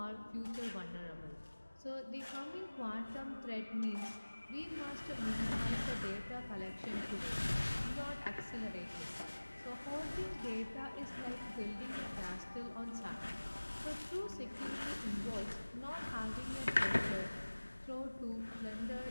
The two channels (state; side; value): inverted; both; correlation -1.00